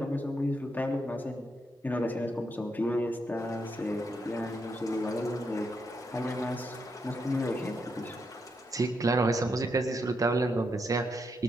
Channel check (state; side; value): normal; both; correlation 0.81